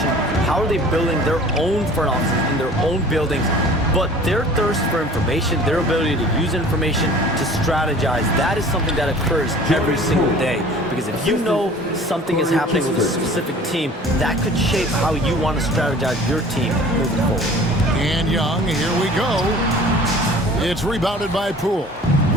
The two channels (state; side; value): normal; both; correlation 0.46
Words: How are they building their own front offices in their own buildings? But their thirst for information, their ability to use information to strategize, that is something that occurs every single day. Because if you know something is happening with a specific team, that could shape how you want to strategize your team moving forward. And Young, here we go. It's rebounded by Poole.